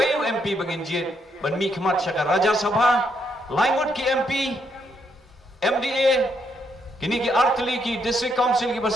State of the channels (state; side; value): normal; both; correlation 0.76